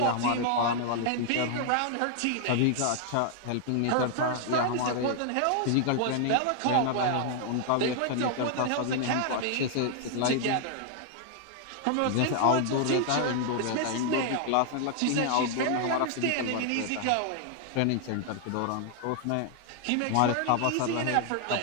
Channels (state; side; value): different; both; correlation 0.00